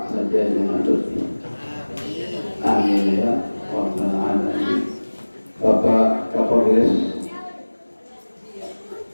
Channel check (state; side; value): inverted; both; correlation -1.00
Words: saja dengan lebih. Amin ya Rabbal alamin. Bapak Kapolres